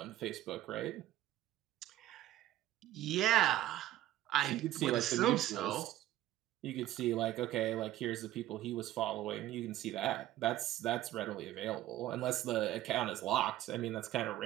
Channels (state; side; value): quieter; left; 14.2 dB